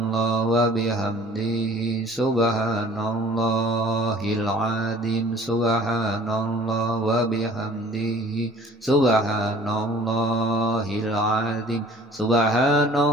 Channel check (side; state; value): both; normal; correlation 0.50